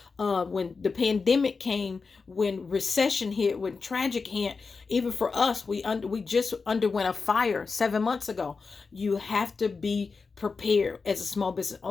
when the pandemic came, when recession hit, when tragic hit, even for us, we just underwent a fire 7 months ago. You have to be prepared as a small business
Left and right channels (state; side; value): quieter; right; 4.7 dB